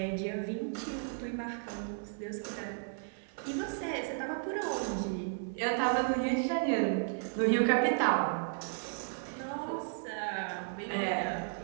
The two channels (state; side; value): silent; left; digital silence